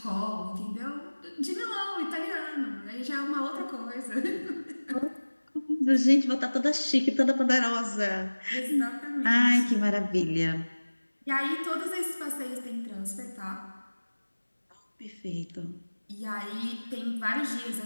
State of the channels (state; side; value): inverted; both; correlation -1.00